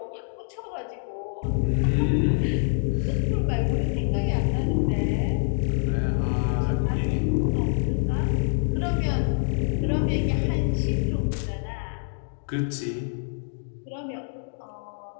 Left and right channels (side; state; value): right; silent; digital silence